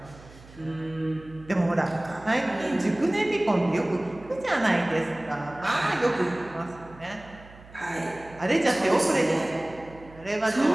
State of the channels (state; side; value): noise; right; hum, 21 dB below the sound